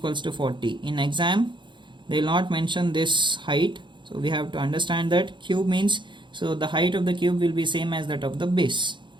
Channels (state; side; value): late; left; 0.23 ms